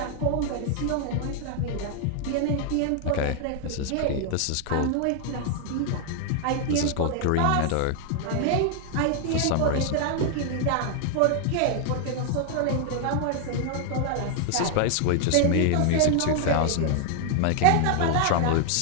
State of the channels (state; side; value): different; both; correlation 0.00